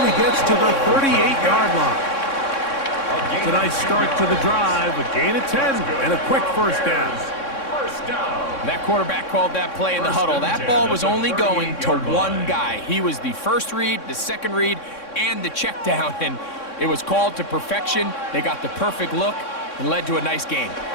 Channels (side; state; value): right; late; 3.6 ms